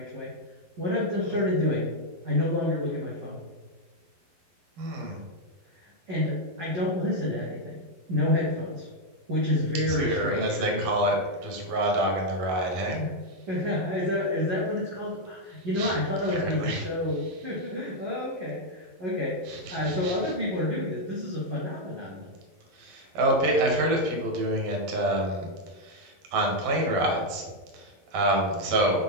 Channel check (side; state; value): left; late; 12 ms